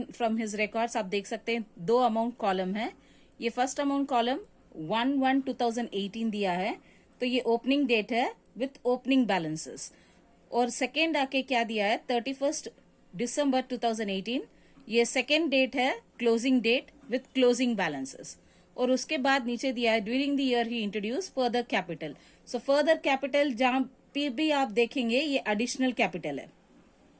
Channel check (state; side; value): identical; both; correlation 1.00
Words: from his records आप देख सकते हैं। दो अमाउंट कॉलम है। ये फर्स्ट अमाउंट कॉलम 1/1/2018 दिया है, तो ये ओपनिंग डेट है विथ ओपनिंग बैलेंसेस। और सेकेंड आके क्या दिया है 31 दिसंबर 2018, ये सेकेंड डेट है closing date with closing balances. और उसके बाद नीचे दिया है during the year he introduce further capital. So further capital जहां पे भी आप देखेंगे ये एडिशनल कैपिटल है,